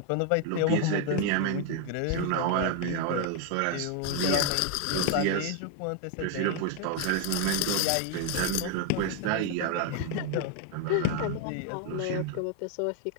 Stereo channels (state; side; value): different; both; correlation 0.01